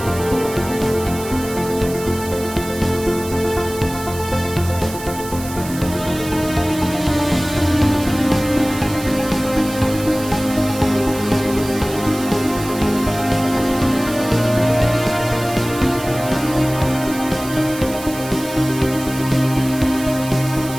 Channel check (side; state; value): right; noise; hiss, 13 dB below the sound